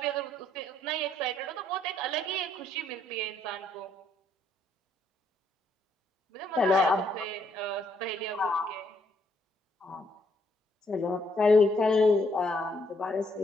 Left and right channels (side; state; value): both; normal; correlation 0.71